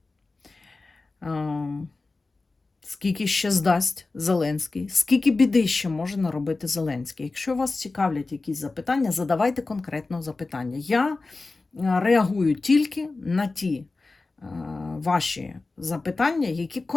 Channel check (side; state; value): right; quieter; 3.6 dB